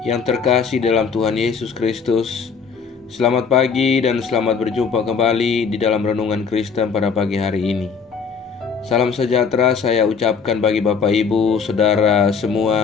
yang terkasih dalam Tuhan Yesus Kristus. Selamat pagi dan selamat berjumpa kembali di dalam Renungan Kristen pada pagi hari ini. Salam sejahtera saya ucapkan bagi Bapak Ibu, Saudara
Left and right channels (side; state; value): right; quieter; 5.8 dB